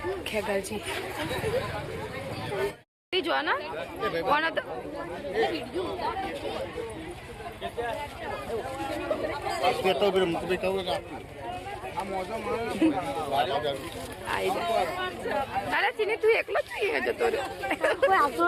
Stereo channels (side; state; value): both; identical; correlation 1.00